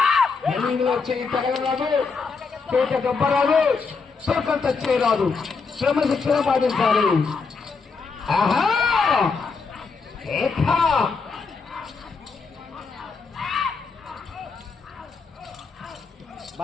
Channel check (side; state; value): right; quieter; 4.8 dB